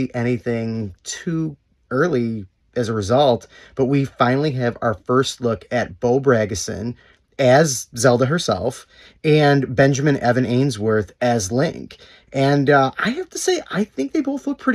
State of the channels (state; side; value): identical; both; correlation 1.00